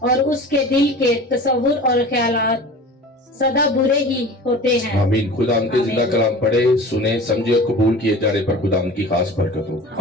और उसके दिल के तसव्वुर और ख्यालात सदा बुरे ही होते हैं। आमीन। खुदा उनके जिंदा कलाम पढ़े, सुने, समझे और कबूल किए जाने पर खुदा उनकी खास बरकत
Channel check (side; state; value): both; normal; correlation 0.38